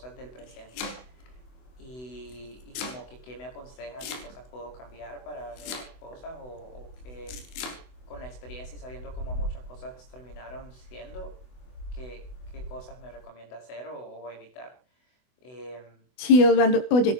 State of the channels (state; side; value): late; right; 24 ms